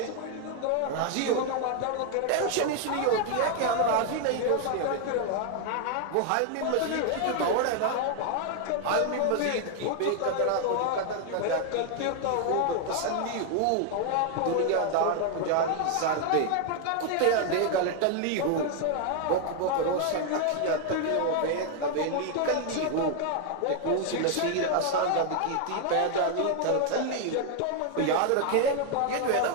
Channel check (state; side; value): different; both; correlation 0.00